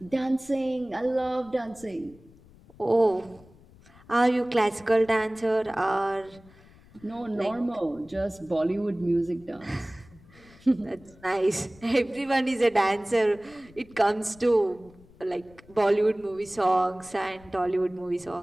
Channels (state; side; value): noise; left; rumble, 25 dB below the sound